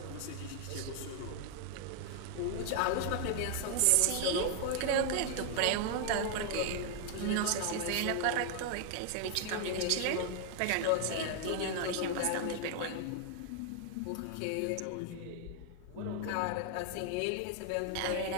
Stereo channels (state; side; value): different; both; correlation 0.00